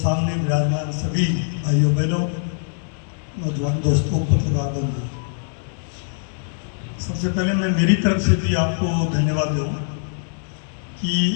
विराजमान सभी भाइयों बहनों, नौजवान दोस्तों, पत्रकार बंधु, सबसे पहले मैं मेरी तरफ से भी आपको धन्यवाद दूँ कि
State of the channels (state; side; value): silent; right; 62 dB below the other